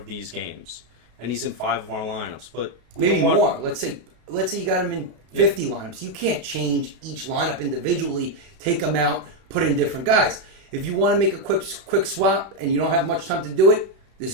these games, and he's in 5 of our lineups. But we Maybe don't want, more. Let's say you got him in 50 lineups. You can't change each lineup individually, take them out, put in different guys. If you want to make a quick swap and you don't have much time to do it,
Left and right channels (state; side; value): late; left; 32 ms